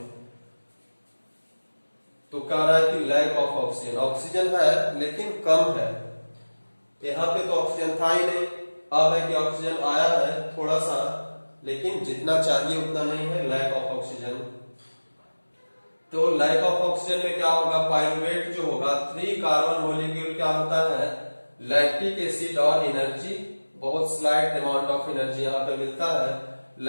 तो कह रहा है कि लैक ऑफ ऑक्सीजन। ऑक्सीजन है लेकिन कम है, यहाँ पे तो ऑक्सीजन था ही नहीं, अब है कि ऑक्सीजन आया है थोड़ा सा, लेकिन जितना चाहिए उतना नहीं है, लैक ऑफ ऑक्सीजन। तो लैक ऑफ ऑक्सीजन में क्या होगा, पाइरुवेट जो होगा, 3 कार्बन मॉलिक्यूल क्या होता है, लैक्टिक एसिड और एनर्जी, बहुत स्लाइट अमाउंट ऑफ एनर्जी यहाँ पे मिलता है।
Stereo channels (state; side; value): inverted; both; correlation -1.00